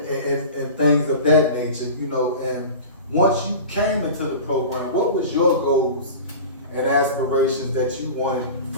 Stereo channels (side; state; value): both; inverted; correlation -0.34